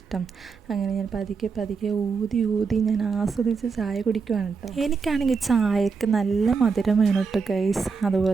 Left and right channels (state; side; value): quieter; left; 5.2 dB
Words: അങ്ങനെ ഞാൻ പതുക്കെ ഊതി ഞാൻ ആസ്വദിച്ച് ചായ കുടിക്കുവാണ് കേട്ടോ. എനിക്കാണെങ്കിൽ ചായക്ക് നല്ല മധുരം വേണം കേട്ടോ ഗൈസ്.